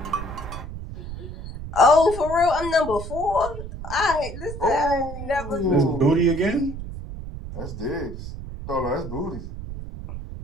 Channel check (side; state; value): right; noise; rumble, 9 dB below the sound